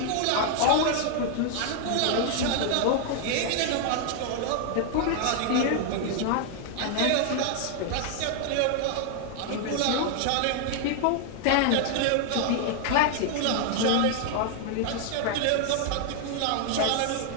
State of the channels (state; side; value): different; both; correlation 0.00